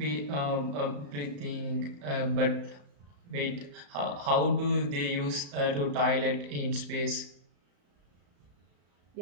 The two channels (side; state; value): left; late; 34 ms